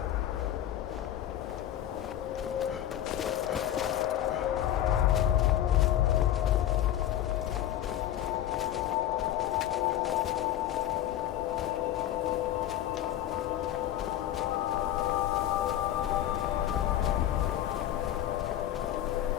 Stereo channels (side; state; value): right; quieter; 12.1 dB